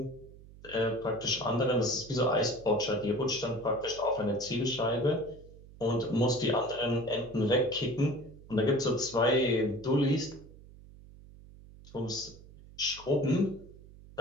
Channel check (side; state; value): right; noise; hum, 20 dB below the sound